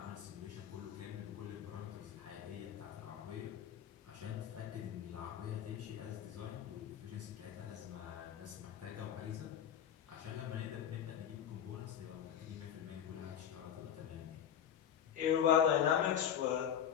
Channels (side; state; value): right; quieter; 9.3 dB